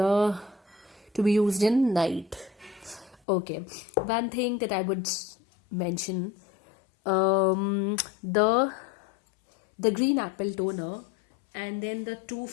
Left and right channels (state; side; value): drops out; right; at 3.2 s